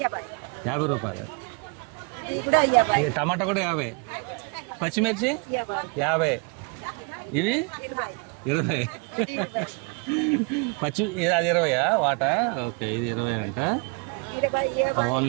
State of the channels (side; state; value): left; quieter; 33.2 dB